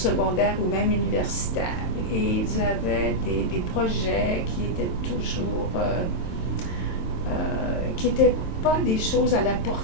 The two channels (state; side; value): late; right; 23 ms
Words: ou même universitaire. Et ils avaient des projets qui étaient toujours, qui n'étaient pas des choses à la